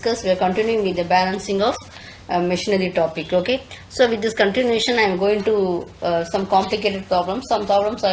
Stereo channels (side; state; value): both; identical; correlation 1.00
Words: continuing with the balancing of machinery topic. Okay. So with this continuation, I am going to some complicated problems. Some problems I